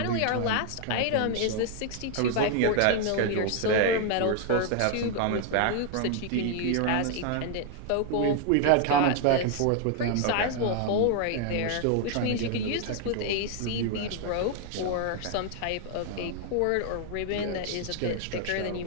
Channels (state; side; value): different; both; correlation 0.00